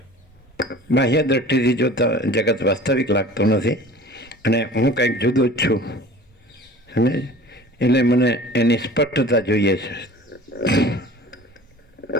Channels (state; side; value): normal; both; correlation 0.43